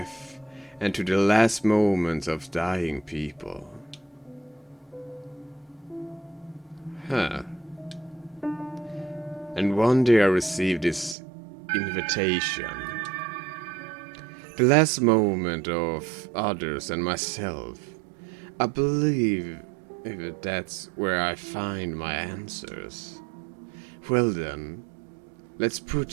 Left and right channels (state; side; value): drops out; left; at 11.2 s